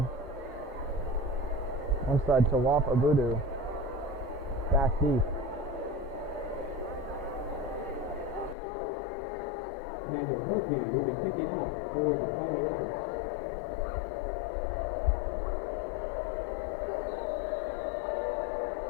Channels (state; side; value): drops out; right; at 8.6 s